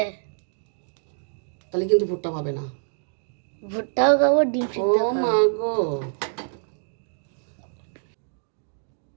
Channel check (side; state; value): left; silent; digital silence